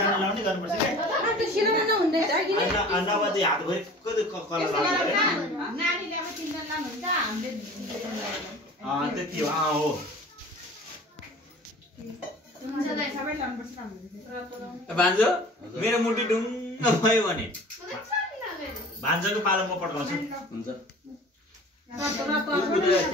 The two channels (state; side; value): normal; both; correlation 0.43